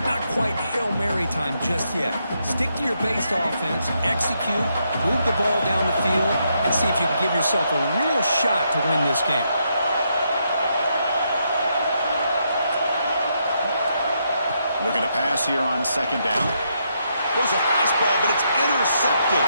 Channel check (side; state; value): both; inverted; correlation -0.78